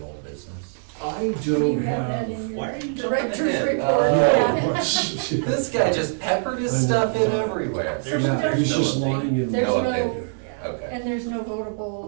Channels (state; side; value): silent; left; digital silence